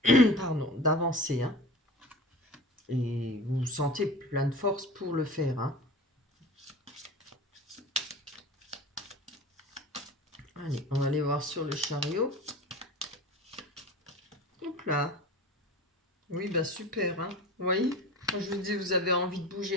pardon, d'avancer. Hein. Et vous vous sentez plein de force pour le faire. Hein. Allez, on va aller voir sur le chariot. Hop là. Oui, bah super. Hein. Vous voyez, quand je vous dis, vous avez envie de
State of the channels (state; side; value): normal; both; correlation 0.36